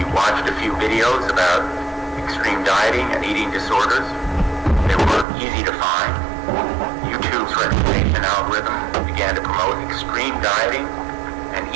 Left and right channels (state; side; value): drops out; left; at 5.2 s